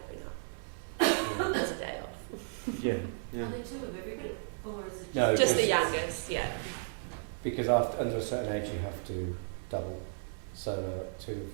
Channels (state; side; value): silent; left; digital silence